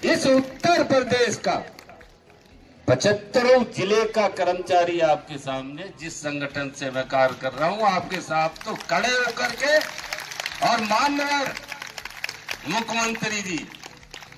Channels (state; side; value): identical; both; correlation 1.00